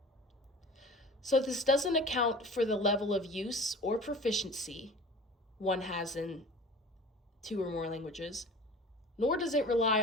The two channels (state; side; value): normal; both; correlation 0.40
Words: So this doesn't account for the level of use or proficiency one has in two or more languages, nor does it rely